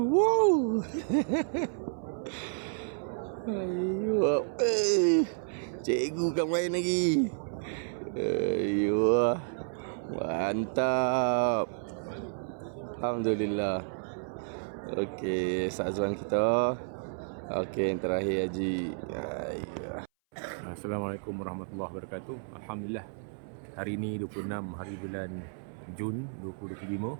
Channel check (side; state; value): left; silent; 57 dB below the other